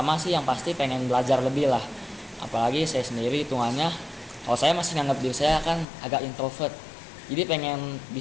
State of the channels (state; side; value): drops out; right; at 5.9 s